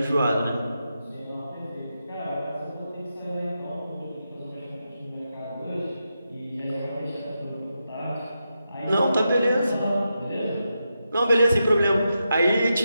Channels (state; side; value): inverted; both; correlation -0.87